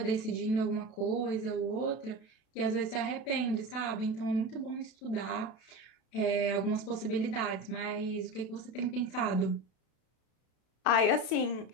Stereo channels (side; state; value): right; late; 33 ms